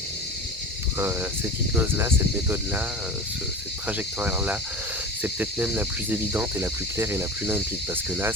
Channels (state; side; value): normal; both; correlation 0.34